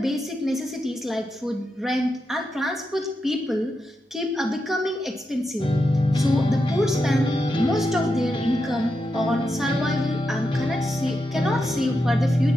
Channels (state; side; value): normal; both; correlation 0.86